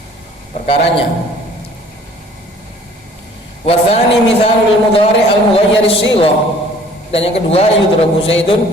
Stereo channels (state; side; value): normal; both; correlation 0.54